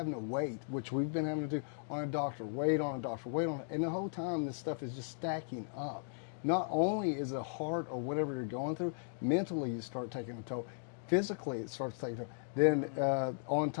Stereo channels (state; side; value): silent; right; digital silence